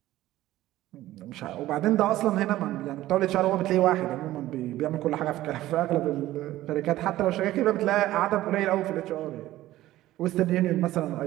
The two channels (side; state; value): left; quieter; 15.3 dB